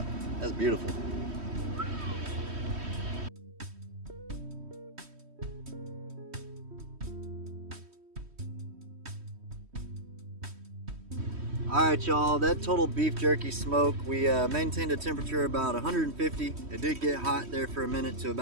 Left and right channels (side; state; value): left; late; 3.1 ms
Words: That's beautiful. Alright y'all, that total beef jerky smoke, we maintained a temperature about 150. It did get hot there for a minute to